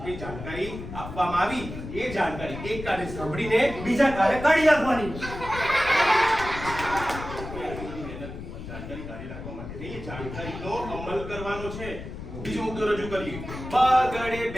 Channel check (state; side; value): noise; left; rumble, 10 dB below the sound